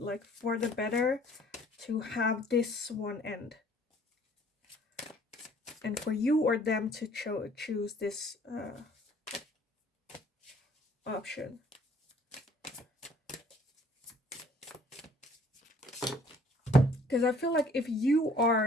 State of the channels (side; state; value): both; normal; correlation 0.57